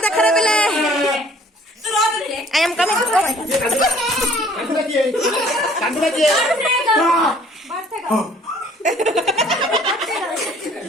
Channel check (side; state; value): both; normal; correlation 0.56